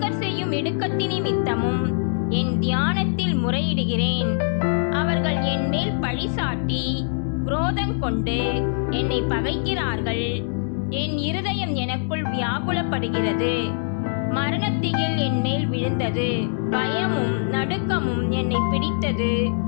செய்யும் இடுக்கத்தின் நிமித்தமும் என் தியானத்தில் முறையிடுகிறேன். அவர்கள் என் மேல் பழி சாட்டி குரோதம் கொண்டு என்னை பகைக்கிறார்கள். என் இருதயம் எனக்குள் வியாகுலப்படுகிறது. மரணத்திகில் என் மேல் விழுந்தது. பயமும் நடுக்கமும் என்னை பிடித்தது.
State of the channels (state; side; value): silent; right; digital silence